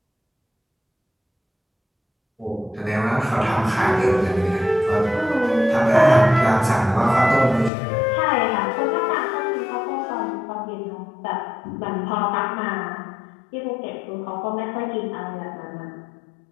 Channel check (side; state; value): right; drops out; at 7.7 s